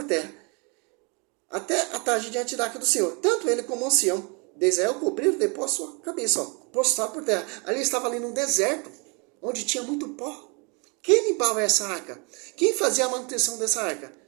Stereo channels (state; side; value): quieter; left; 32.3 dB